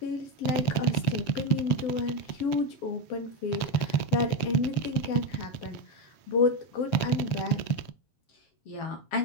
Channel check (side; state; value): right; late; 7.3 ms